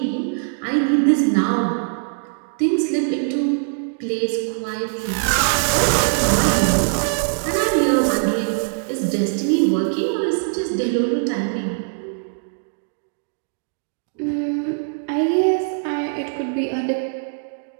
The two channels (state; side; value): silent; left; digital silence